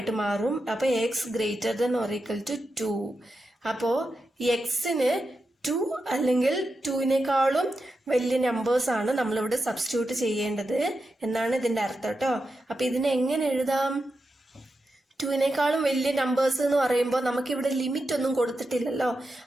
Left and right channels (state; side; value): normal; both; correlation 0.89